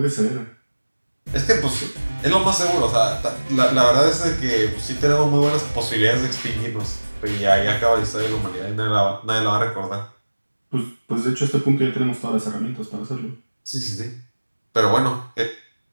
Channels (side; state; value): both; inverted; correlation -1.00